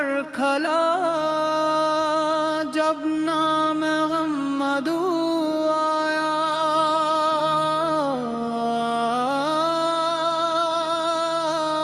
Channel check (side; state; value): both; identical; correlation 1.00